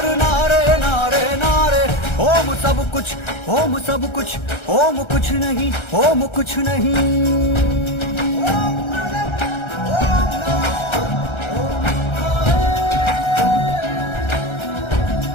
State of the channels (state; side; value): late; right; 1.3 ms